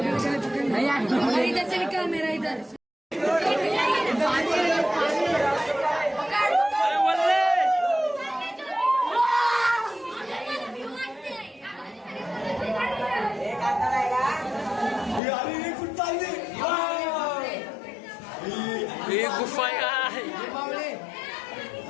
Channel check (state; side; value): drops out; right; at 15.2 s